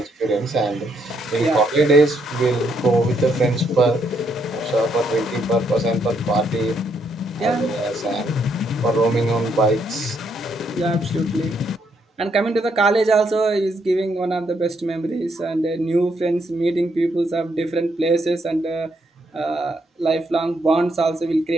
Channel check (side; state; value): both; normal; correlation 0.74